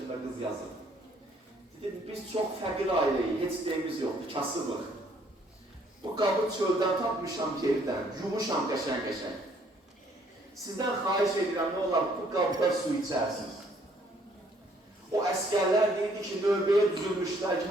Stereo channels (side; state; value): both; normal; correlation 0.64